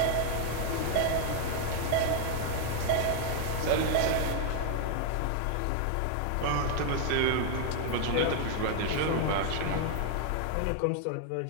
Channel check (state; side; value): different; both; correlation 0.00